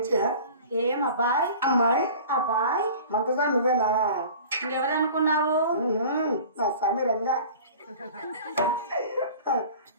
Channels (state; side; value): inverted; both; correlation -0.42